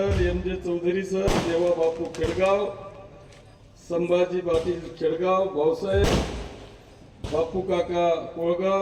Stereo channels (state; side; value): identical; both; correlation 1.00